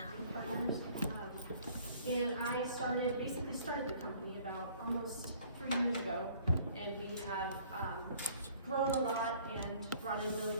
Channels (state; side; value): inverted; both; correlation -0.56